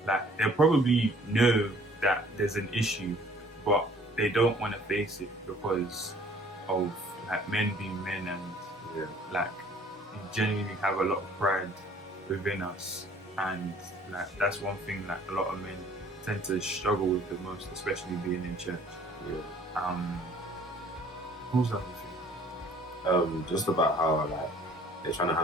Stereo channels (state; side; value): normal; both; correlation 0.55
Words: like they'll probably know that there's an issue, but they don't want to face it because of like men being men, and like we genuinely have a lot of pride within us, and like that's one thing like a lot of men tend to struggle with the most, especially being in church. What was the other thing? Just about how like they're trying to